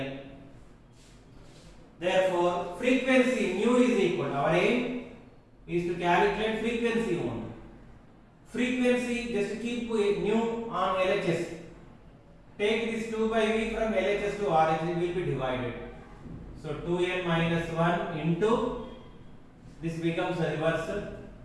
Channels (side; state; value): both; identical; correlation 1.00